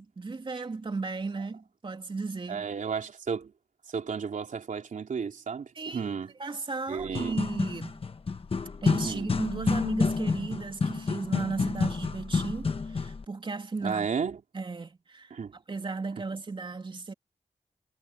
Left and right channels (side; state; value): both; normal; correlation 0.72